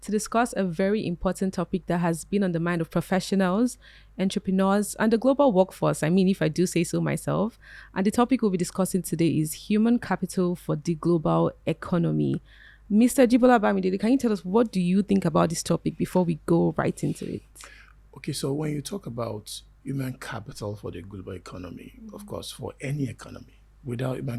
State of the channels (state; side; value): identical; both; correlation 1.00